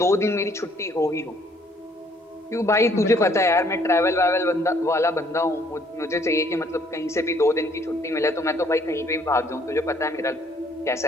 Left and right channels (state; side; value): normal; both; correlation 0.63